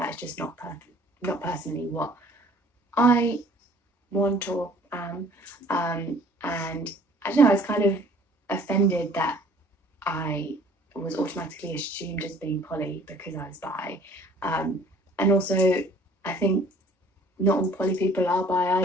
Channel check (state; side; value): normal; both; correlation 0.54